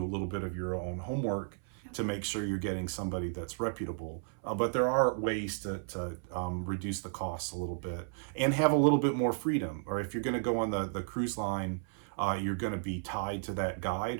a little bit of your own homework to make sure you're getting somebody that's reputable. But there are ways to reduce the costs a little bit and have a little bit more freedom. Or if you're going to go on the cruise line, you're going to be tied to that guide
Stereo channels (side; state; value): left; silent; 55 dB below the other